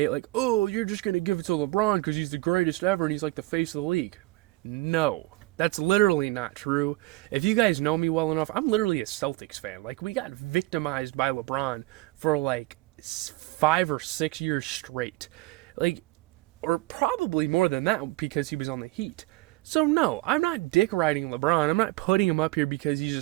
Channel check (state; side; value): quieter; left; 21.1 dB